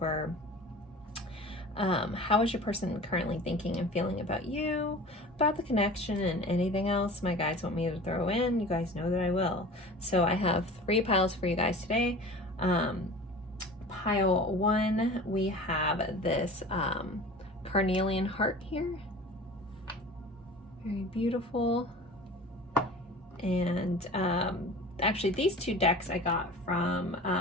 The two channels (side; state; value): both; normal; correlation 0.39